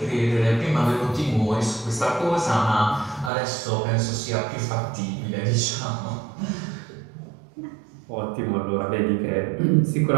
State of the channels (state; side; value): drops out; left; at 3.3 s